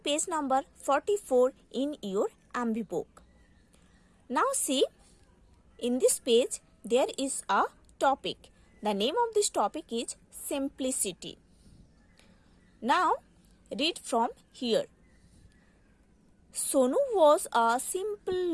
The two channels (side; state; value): both; identical; correlation 1.00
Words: page number 44 in your MB book. Now see, in this page there is a topic. The name of this topic is simplicity. Now read from here. Sonu was a simple